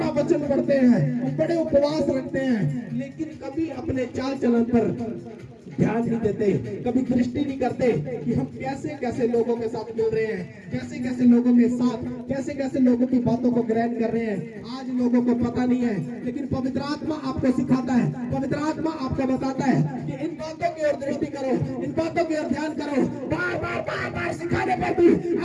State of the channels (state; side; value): identical; both; correlation 1.00